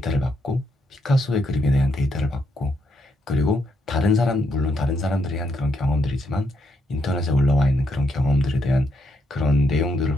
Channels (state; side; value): normal; both; correlation 0.77